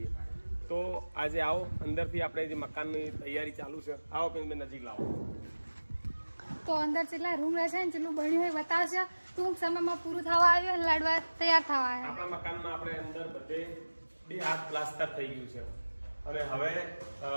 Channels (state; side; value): inverted; both; correlation -1.00